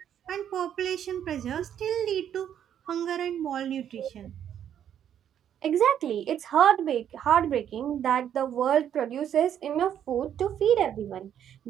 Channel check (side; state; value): left; quieter; 9.7 dB